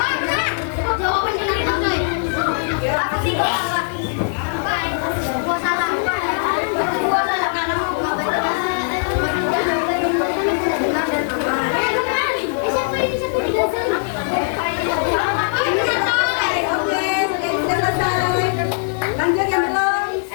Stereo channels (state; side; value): silent; right; digital silence